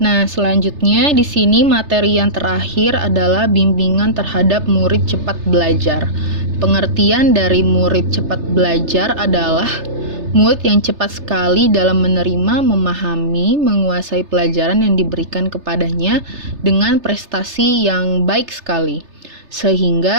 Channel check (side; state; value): left; late; 3.3 ms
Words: selanjutnya di sini materi yang terakhir adalah bimbingan terhadap murid cepat belajar. Pengertian dari murid cepat belajar adalah murid yang cepat sekali dalam menerima, memahami, menguasai pelajaran yang diberikan kepadanya dengan prestasi yang baik sekali.